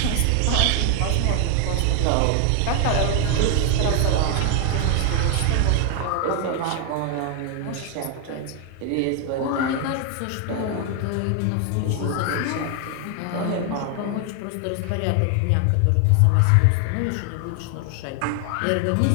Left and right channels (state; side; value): different; both; correlation 0.00